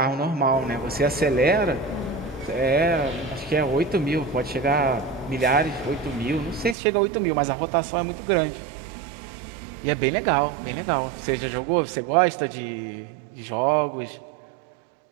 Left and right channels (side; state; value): left; drops out; at 6.8 s